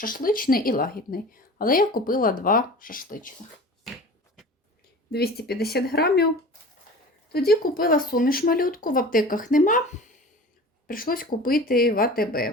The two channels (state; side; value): normal; both; correlation 0.39